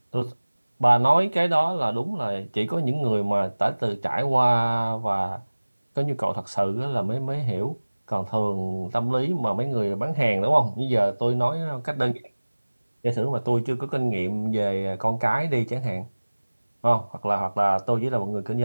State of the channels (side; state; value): both; inverted; correlation -1.00